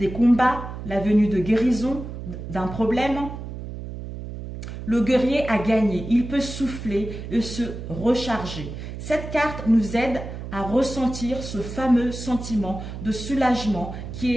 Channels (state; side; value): noise; right; hum, 9 dB below the sound